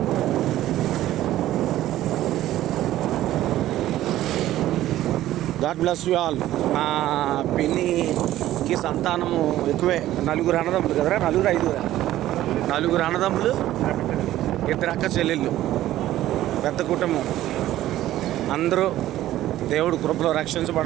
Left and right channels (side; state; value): left; quieter; 14.0 dB